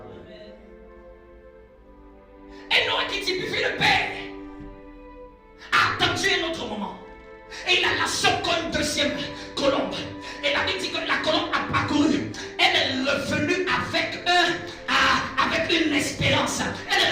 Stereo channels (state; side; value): identical; both; correlation 1.00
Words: Et Noé qui typifie le Père a attendu un autre moment. Et il a lâché encore une deuxième colombe. Et la Bible dit que la colombe a parcouru. Elle est revenue avec une espérance. Elle